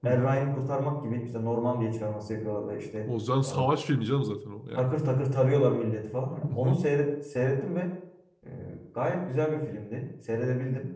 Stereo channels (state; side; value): identical; both; correlation 1.00